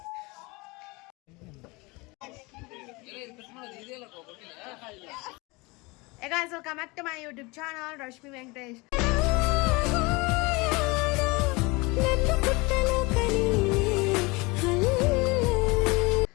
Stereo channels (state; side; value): quieter; right; 25.3 dB